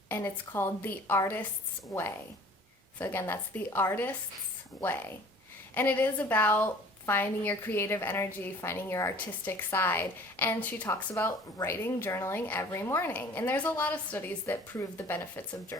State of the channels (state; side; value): normal; both; correlation 0.49